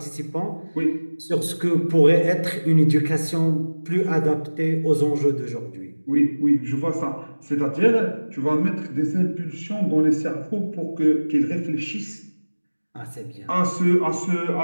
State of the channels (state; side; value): inverted; both; correlation -1.00